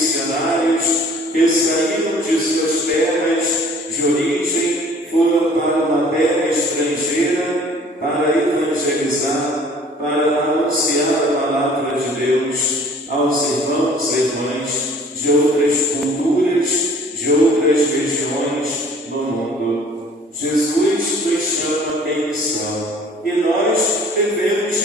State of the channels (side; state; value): both; normal; correlation 0.53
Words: que saíram de suas terras de origem, foram para uma terra estrangeira para evangelizar, para anunciar a palavra de Deus aos irmãos e irmãs de outras culturas, de outras regiões no mundo. Jesus nos chama em missão e nós devemos